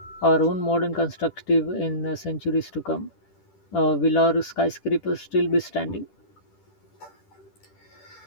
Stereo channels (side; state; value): right; late; 10 ms